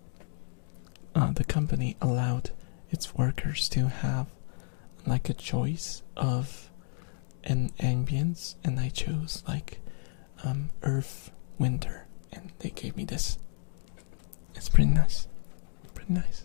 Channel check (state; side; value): silent; right; 57 dB below the other